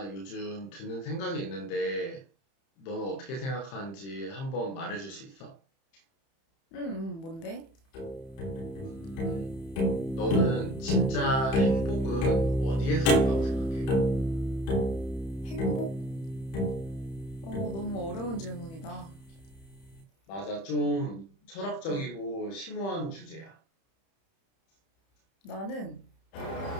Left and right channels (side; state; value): right; late; 30 ms